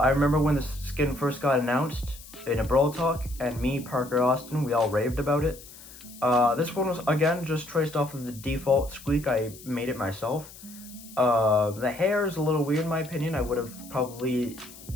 remember when the skin first got announced in a Brawl Talk, and me, Parker, Austin, we all raved about it. This one was, again, just traced off of the default Squeak. I made it myself. The hair is a little weird in my opinion. I would have probably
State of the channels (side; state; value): left; noise; hiss, 18 dB below the sound